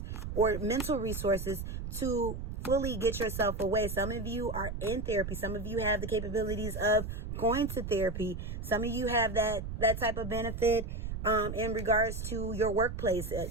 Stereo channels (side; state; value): right; noise; rumble, 6 dB below the sound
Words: or mental resources, to fully get yourself away. Some of you are in therapy. Some of you have the capabilities of going to therapy. Some of you have that type of benefit in regards to your workplace.